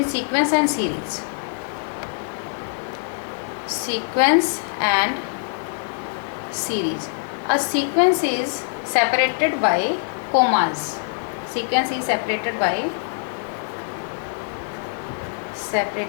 sequence and series. Sequence and series. A sequence is separated by commas. Sequence is separated by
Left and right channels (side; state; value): right; silent; digital silence